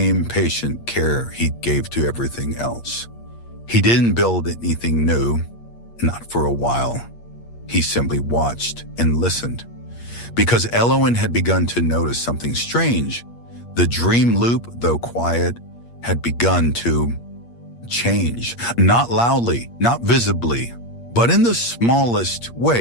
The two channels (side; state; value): right; late; 8.5 ms